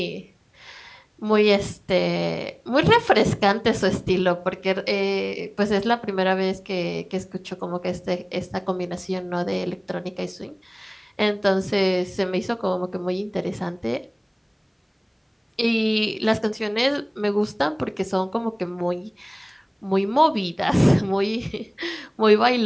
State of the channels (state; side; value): identical; both; correlation 1.00